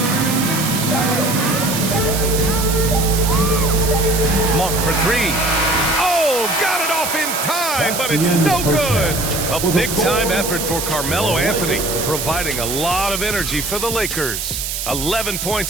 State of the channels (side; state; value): right; noise; hiss, 4 dB below the sound